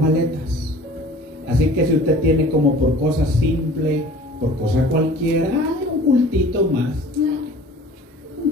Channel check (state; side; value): normal; both; correlation 0.45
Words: Así que si usted tiene como por cosa simple, por cosa cualquiera, un cultito más, un